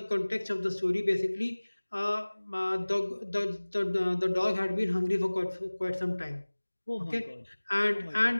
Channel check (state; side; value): inverted; both; correlation -1.00